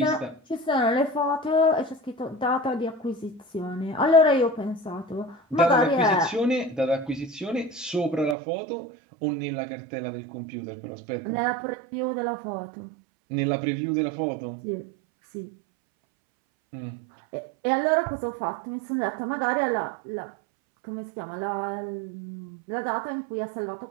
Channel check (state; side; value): drops out; left; at 8.3 s